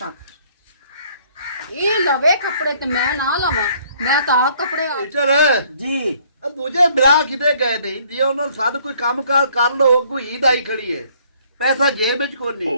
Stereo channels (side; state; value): both; inverted; correlation -0.62